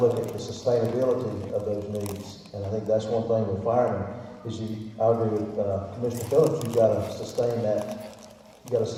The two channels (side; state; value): both; identical; correlation 1.00